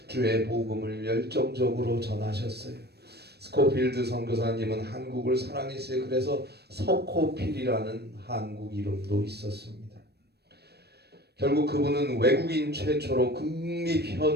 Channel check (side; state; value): left; late; 0.47 ms